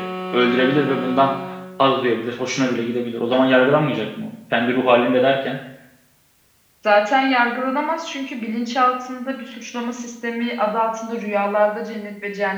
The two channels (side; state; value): both; identical; correlation 1.00